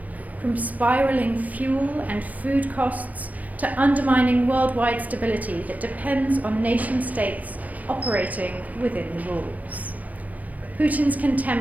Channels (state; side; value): late; left; 0.077 ms